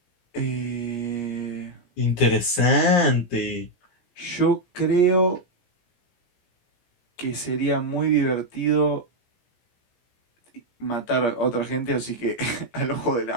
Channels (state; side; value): late; right; 17 ms